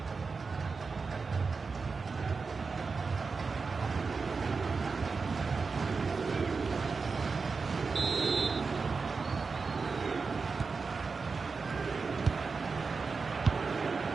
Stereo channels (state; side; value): quieter; left; 4.7 dB